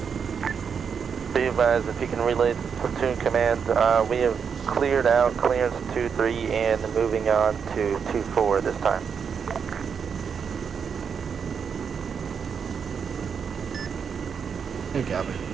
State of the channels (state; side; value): quieter; left; 6.6 dB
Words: Be advised, if you can relay the platoon command, we have cleared out clearance 2-3 and moving on to 2-4 this time. You copy.